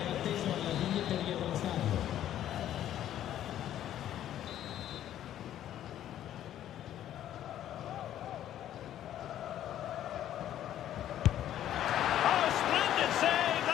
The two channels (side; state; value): right; quieter; 11.6 dB